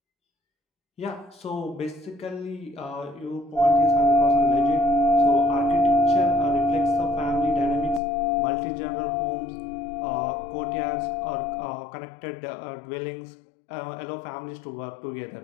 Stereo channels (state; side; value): drops out; right; at 8.0 s